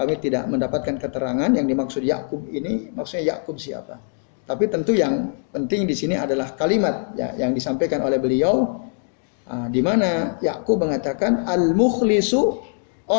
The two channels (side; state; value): right; silent; digital silence